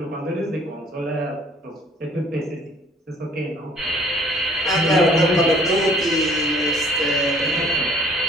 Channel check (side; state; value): both; normal; correlation 0.56